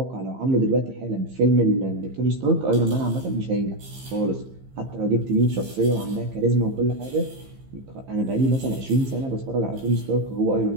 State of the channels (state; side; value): late; left; 15 ms